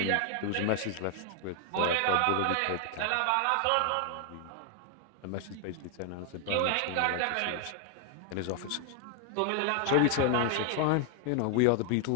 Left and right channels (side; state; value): both; different; correlation 0.00